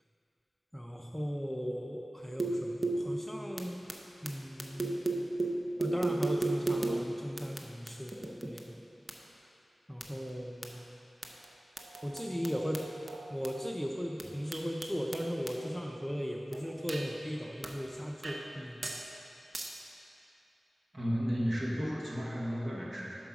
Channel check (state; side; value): normal; both; correlation 0.96